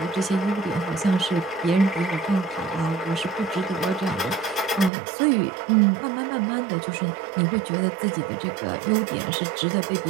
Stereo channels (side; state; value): left; drops out; at 4.9 s